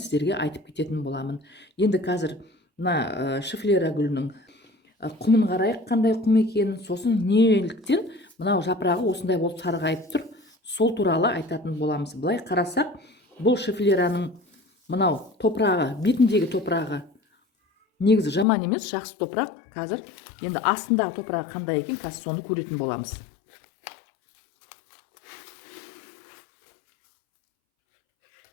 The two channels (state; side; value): drops out; right; at 18.4 s